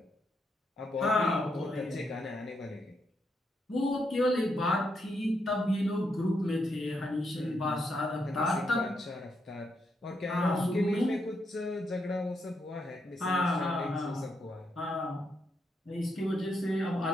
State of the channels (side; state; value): both; normal; correlation 0.80